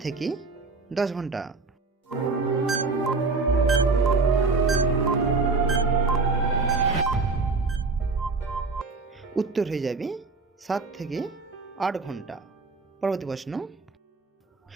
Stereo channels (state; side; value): quieter; left; 4.0 dB